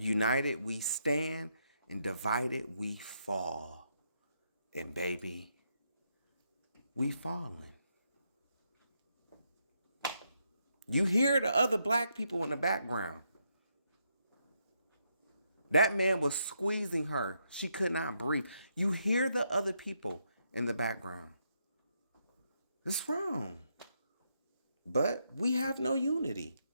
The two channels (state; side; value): inverted; both; correlation -0.78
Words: we stand, and divided we fall. And baby, we falling. You hear the other black people in the background. That man was squeezing her. She could not breathe. You hear the other people in the background. It's wrong. But we have no unity.